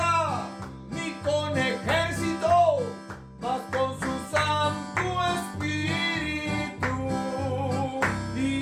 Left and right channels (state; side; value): identical; both; correlation 1.00